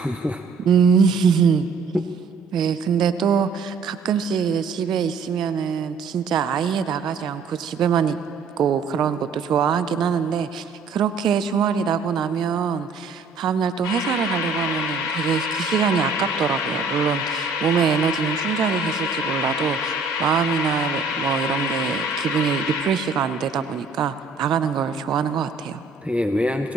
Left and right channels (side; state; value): left; quieter; 4.4 dB